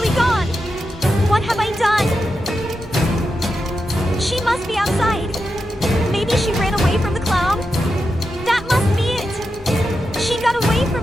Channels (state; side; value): normal; both; correlation 0.88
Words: gone! What have I done? She must be outside. Maybe she ran away from the clown? That must be it! She got away